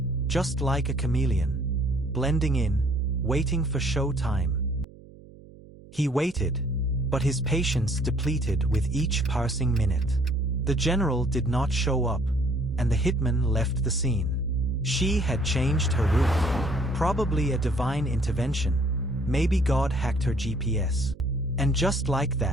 just like a chameleon, blending in, waiting for show time. He waited, but his patience depleted with each passing minute. The general did not show up, and the hitman left the scene. She had changed her route, probably a divine intervention. Maybe God hacked her GPS. And just like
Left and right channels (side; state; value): right; noise; hum, 21 dB below the sound